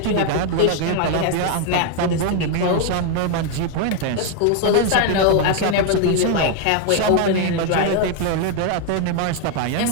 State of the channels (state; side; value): different; both; correlation 0.01